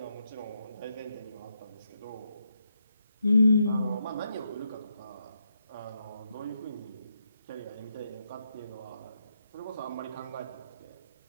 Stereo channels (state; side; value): inverted; both; correlation -0.81